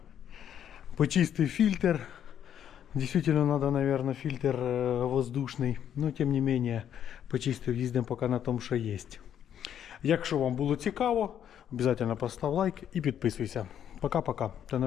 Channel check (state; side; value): quieter; right; 9.6 dB